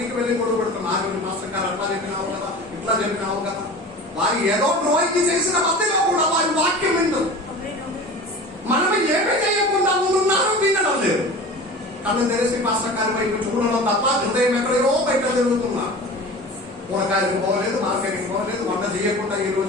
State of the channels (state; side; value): normal; both; correlation 0.37